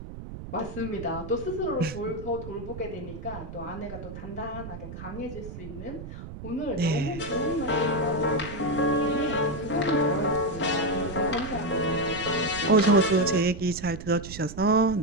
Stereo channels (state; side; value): noise; right; rumble, 11 dB below the sound